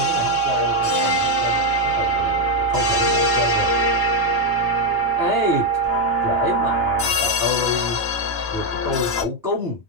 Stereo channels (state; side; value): normal; both; correlation 0.04